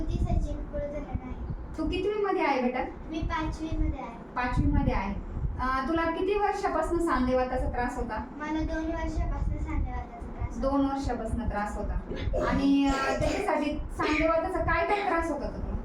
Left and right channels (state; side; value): identical; both; correlation 1.00